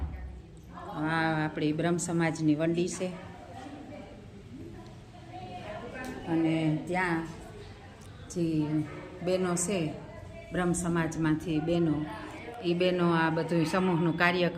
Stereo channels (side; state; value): both; identical; correlation 1.00